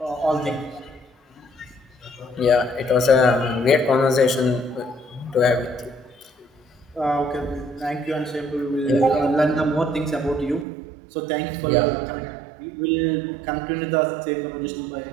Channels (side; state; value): left; drops out; at 10.7 s